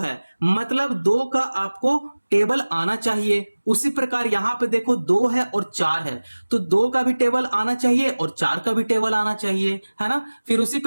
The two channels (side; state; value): both; inverted; correlation -1.00